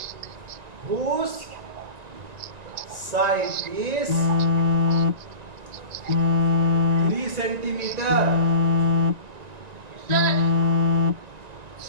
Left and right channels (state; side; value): late; left; 1.9 ms